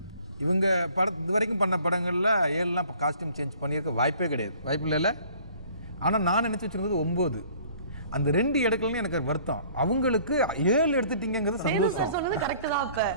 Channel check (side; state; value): both; inverted; correlation -0.54